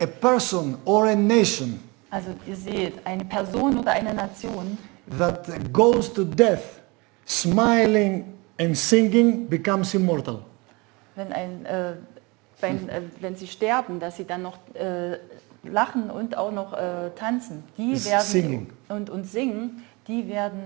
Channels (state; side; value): quieter; left; 26.6 dB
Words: person or a nation Also ihr seht, eine Person oder eine Nation, that goes to death smiling and singing becomes immortal. wenn sie sterben, dass sie dann noch lachen und auch noch tanzen, die Singing. werden und singen, die